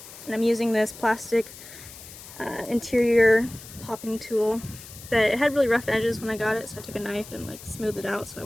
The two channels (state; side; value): noise; left; hiss, 16 dB below the sound